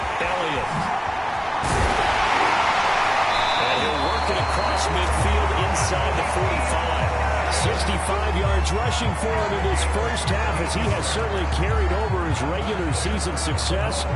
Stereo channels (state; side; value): identical; both; correlation 1.00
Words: Elliott. And he'll work it across midfield inside the 45. 65 yards rushing for him in this first half as he has certainly carried over his regular season success